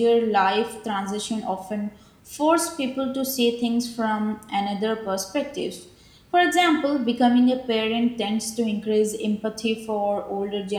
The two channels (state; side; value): identical; both; correlation 1.00